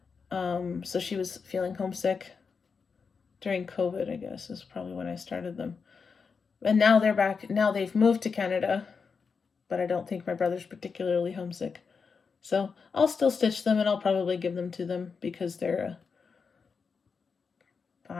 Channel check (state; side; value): quieter; right; 5.4 dB